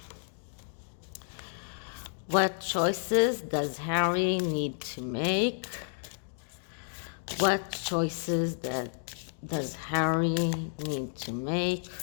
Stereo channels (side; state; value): right; silent; digital silence